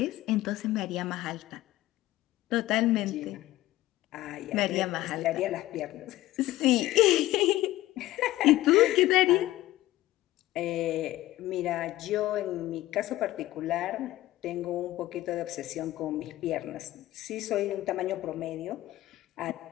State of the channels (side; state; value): right; quieter; 16.2 dB